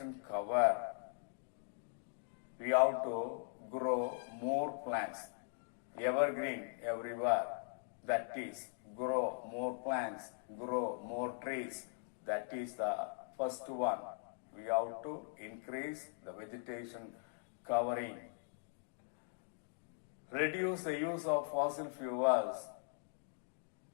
cover, we have to grow more plants, evergreen everywhere. That is, grow more plants, grow more trees. That is the first one. We have to increase the vegetation covering. Reduce the use of fossil fuels.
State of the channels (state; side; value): silent; right; digital silence